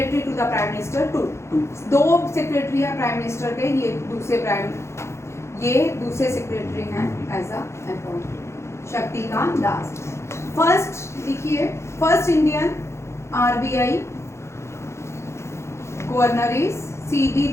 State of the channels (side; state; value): right; late; 0.13 ms